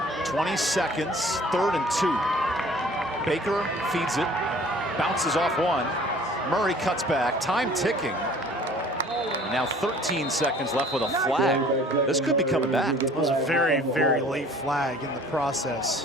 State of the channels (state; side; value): normal; both; correlation 0.51